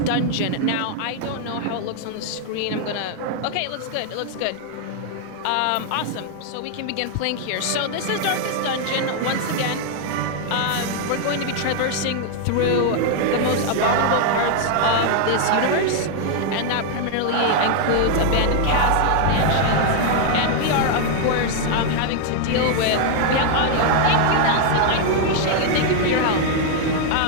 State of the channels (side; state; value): both; different; correlation 0.00